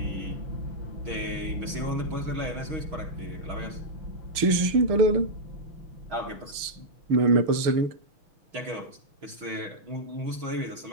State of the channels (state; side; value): late; left; 6.7 ms